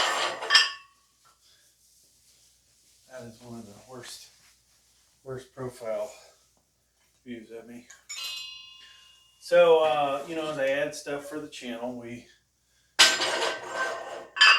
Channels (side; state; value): both; identical; correlation 1.00